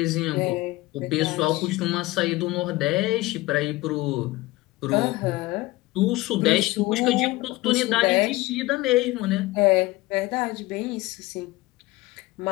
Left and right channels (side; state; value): right; quieter; 19.2 dB